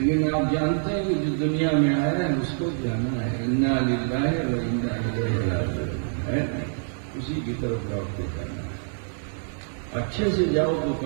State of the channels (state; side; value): silent; left; 61 dB below the other